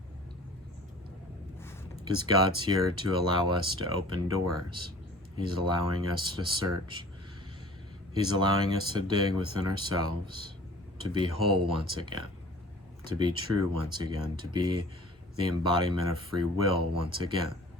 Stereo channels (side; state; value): both; normal; correlation 0.46